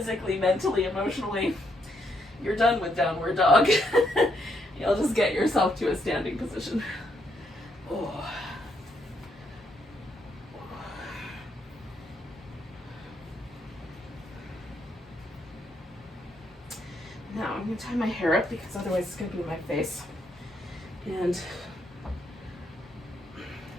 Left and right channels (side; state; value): both; normal; correlation 0.76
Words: mentally, emotionally, you're done with downward dog. You'll just get yourself to a standing position. Now I'm going to tie my hair up because otherwise it's going to be in my face. And